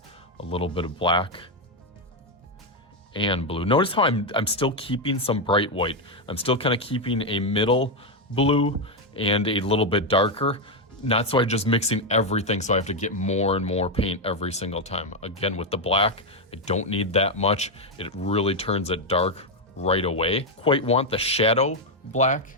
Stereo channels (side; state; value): both; normal; correlation 0.04